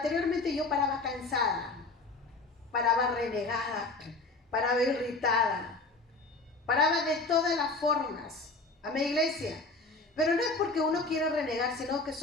yo paraba cansada, paraba renegada, paraba irritada, paraba de todas las formas. Amén, iglesia. Pero no es porque uno quiere renegar, sino que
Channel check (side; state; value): right; quieter; 3.4 dB